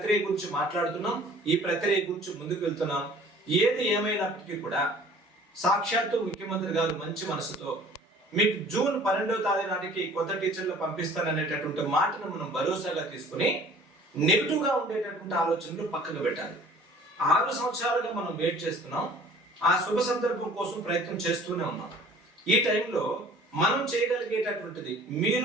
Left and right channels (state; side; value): normal; both; correlation 0.50